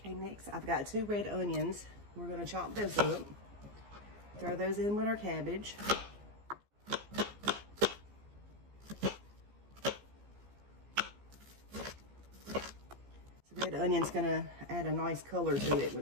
next I've got 2 red onions. We're going to chop those up. Throw those in with our cabbage. The red onion's going to add a nice color to it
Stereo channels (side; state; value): left; late; 15 ms